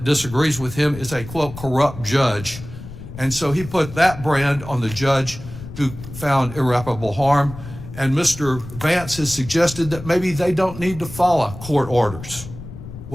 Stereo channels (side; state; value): left; noise; rumble, 13 dB below the sound